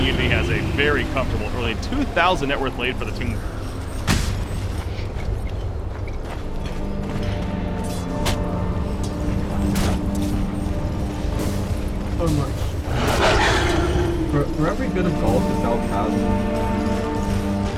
Unity has a very comfortable early 2,000 net worth lead for the team. So much. For every bit of gold this elf has,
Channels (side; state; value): both; identical; correlation 1.00